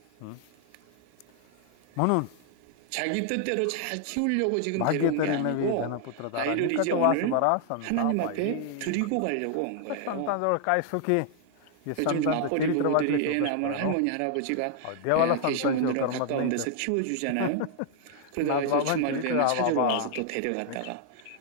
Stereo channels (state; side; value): different; both; correlation 0.00